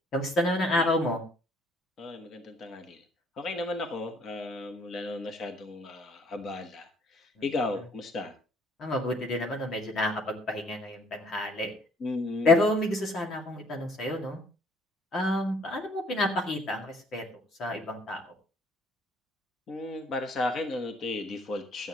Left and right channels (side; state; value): both; normal; correlation 0.61